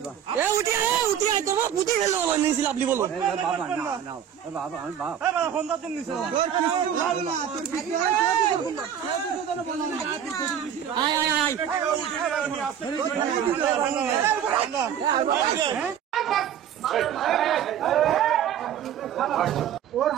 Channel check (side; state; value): left; quieter; 9.3 dB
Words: আপনি বলুন ওর